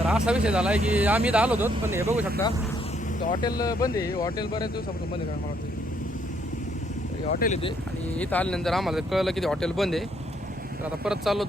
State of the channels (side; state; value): both; normal; correlation 0.70